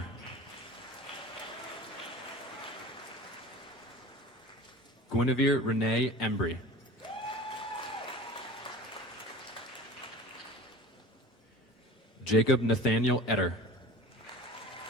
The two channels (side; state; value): both; normal; correlation 0.37